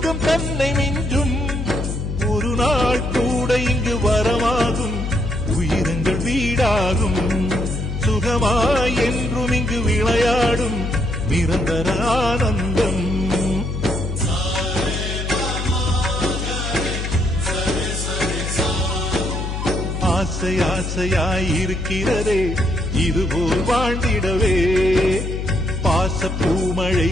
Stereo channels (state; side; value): noise; left; hum, 4 dB below the sound